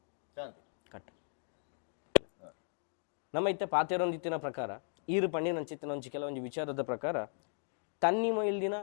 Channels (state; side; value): silent; right; digital silence